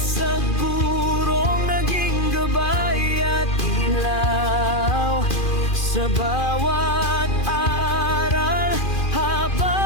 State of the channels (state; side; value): late; right; 2.4 ms